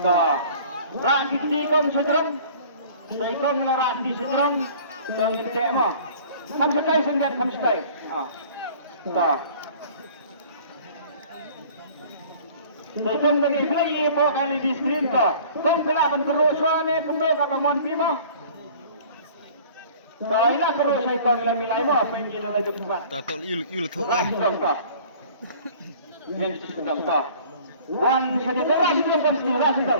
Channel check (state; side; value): inverted; both; correlation -0.48